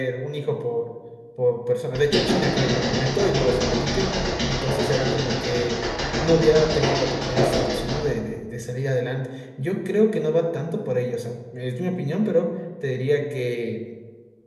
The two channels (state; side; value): identical; both; correlation 1.00